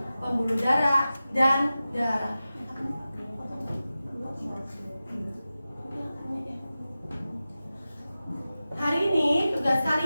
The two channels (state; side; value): inverted; both; correlation -0.94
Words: pembuluh darah, dan darah. Hari ini tugas